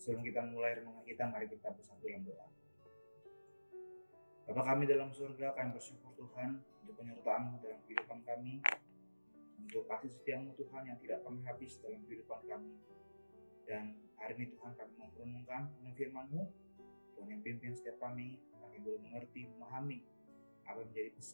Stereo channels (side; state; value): both; inverted; correlation -1.00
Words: kita mulai renungan kita, mari kita bersatu dalam doa. Bapa kami dalam surga, kami bersyukur Tuhan untuk penyertaan-Mu dalam kehidupan kami, untuk kasih setia-Mu Tuhan yang tidak pernah habis dalam kehidupan kami. Dan hari ini Tuhan kami mau merenungkan firman-Mu, Tuhan yang pimpin setiap kami, kami boleh mengerti, memahami apa yang menjadi